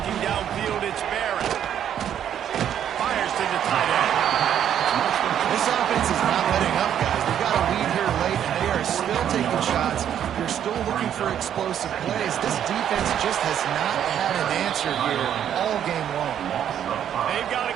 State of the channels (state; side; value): quieter; left; 9.8 dB